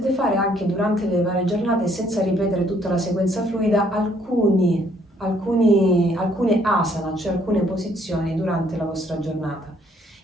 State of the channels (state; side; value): normal; both; correlation 0.66